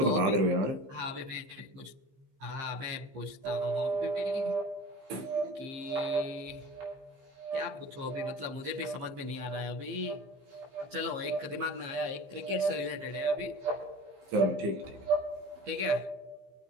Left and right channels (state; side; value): late; left; 15 ms